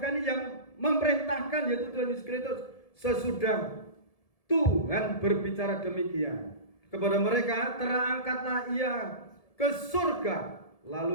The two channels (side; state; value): right; late; 1.7 ms